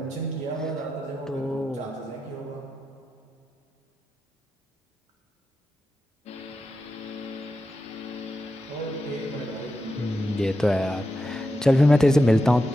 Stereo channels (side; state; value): both; normal; correlation 0.89